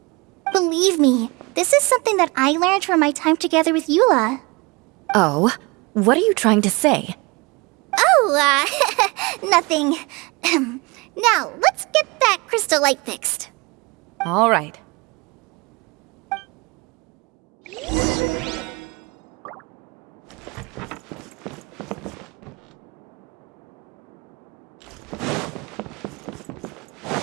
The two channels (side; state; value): left; quieter; 26.1 dB